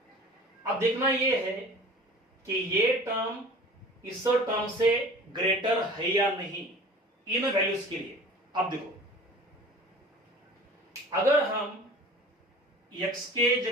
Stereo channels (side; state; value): both; normal; correlation 0.43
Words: अब देखना यह है कि ये टर्म इस टर्म से ग्रेटर है या नहीं इन वैल्यूज के लिए। अब देखो, अगर हम x के